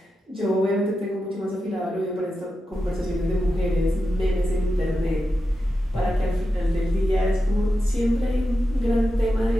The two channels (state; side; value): normal; both; correlation 0.90